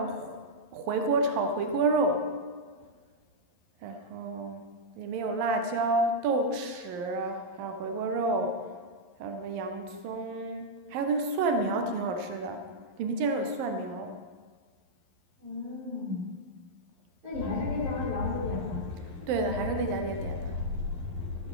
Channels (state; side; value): late; left; 11 ms